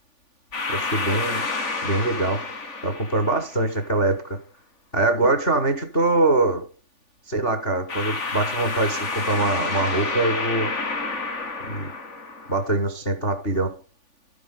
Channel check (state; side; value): late; right; 3.5 ms